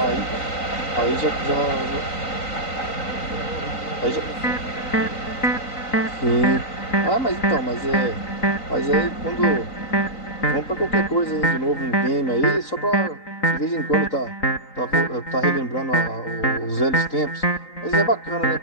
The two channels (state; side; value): late; right; 3.9 ms